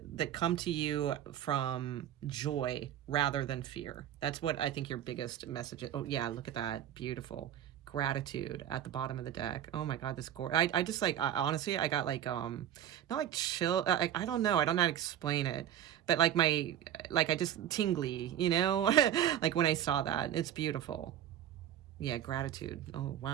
come to you from joy rather than fear. That's what I think your biggest message is. Oh, yeah, look at that. Beautiful. Gratitude at the bottom of the deck. Oh my God, this I just like, honestly, I got like, not like chill, I don't know, I don't know how to explain it, but like I just tingly, you know, like when I saw that. It's beautiful. Yeah, gratitude. Oh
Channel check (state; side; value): quieter; left; 10.8 dB